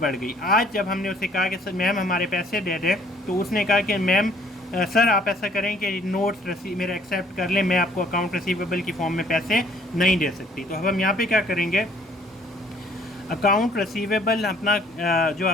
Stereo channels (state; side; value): normal; both; correlation 0.60